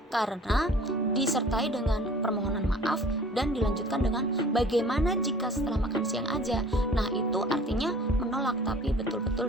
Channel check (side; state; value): both; normal; correlation 0.48